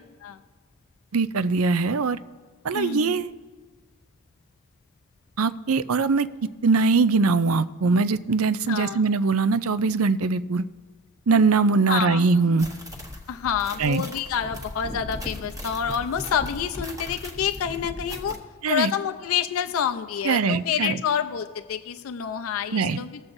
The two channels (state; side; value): normal; both; correlation 0.26